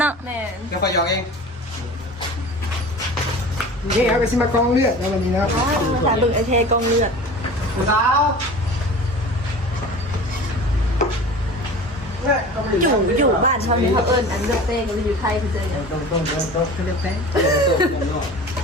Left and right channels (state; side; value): normal; both; correlation 0.38